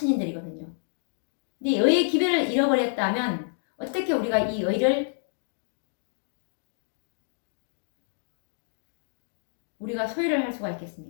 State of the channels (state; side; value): silent; right; digital silence